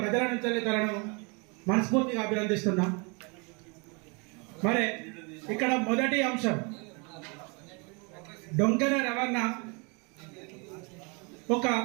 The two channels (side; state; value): left; quieter; 32.0 dB